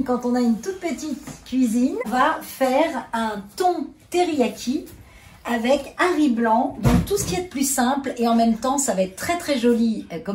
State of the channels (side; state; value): both; identical; correlation 1.00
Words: quand on a une toute petite cuisine? On va faire un thon teriyaki avec un riz blanc, donc tout ce qui est de plus simple, et en même temps, ça va être très très joli